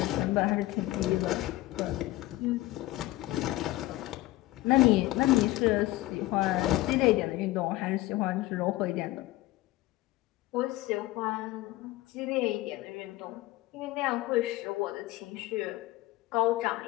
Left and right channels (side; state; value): right; quieter; 17.6 dB